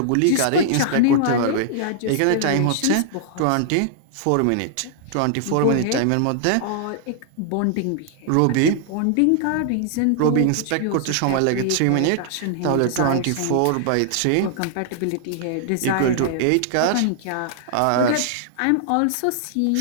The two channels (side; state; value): both; different; correlation -0.01